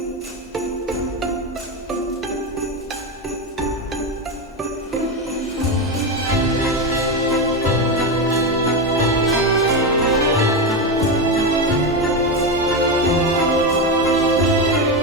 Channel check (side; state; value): both; normal; correlation 0.13